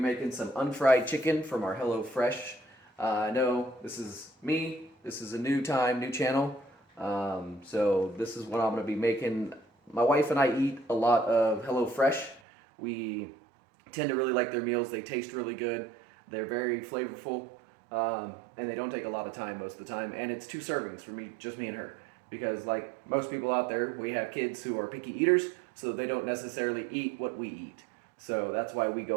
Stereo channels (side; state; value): left; drops out; at 12.4 s